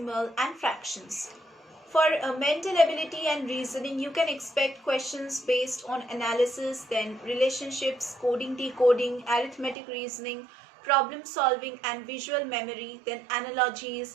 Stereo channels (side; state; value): left; drops out; at 9.8 s